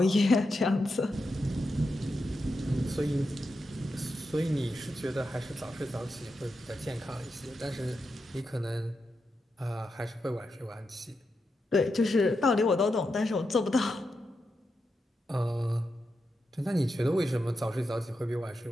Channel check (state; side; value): normal; both; correlation 0.87